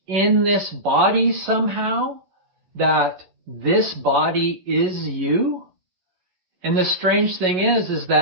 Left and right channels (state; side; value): late; left; 11 ms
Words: in this body somehow? That this body is you? And the strange thing is